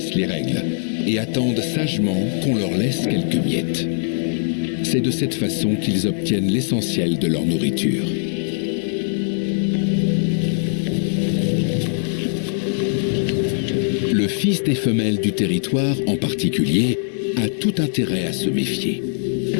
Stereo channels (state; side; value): silent; right; 62 dB below the other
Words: les règles et attendent sagement qu'on leur laisse quelques miettes. C'est de cette façon qu'ils obtiennent l'essentiel de leur nourriture. Le fils des femelles du territoire, en particulier, a tout intérêt à se méfier.